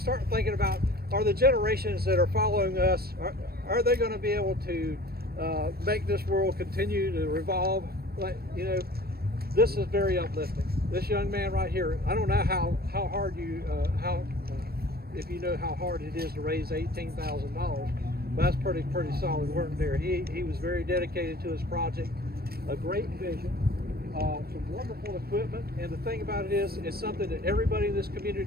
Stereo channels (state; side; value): late; left; 0.45 ms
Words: thinking about, are the generations that are following us, are they going to be able to make this world continue to revolve? This is very uplifting. This young man right here, I don't know how hard if you know how hard it is to raise $18,000, but that's pretty solid work there. He was very dedicated to his project, a great vision. Some wonderful equipment, and the thing about it is, it's something that everybody in this